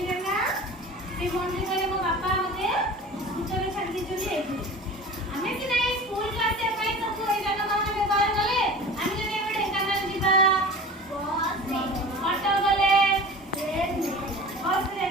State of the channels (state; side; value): normal; both; correlation 0.37